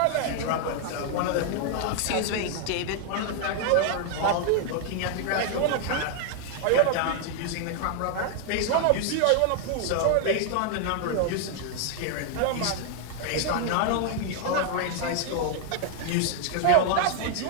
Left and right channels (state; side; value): different; both; correlation 0.00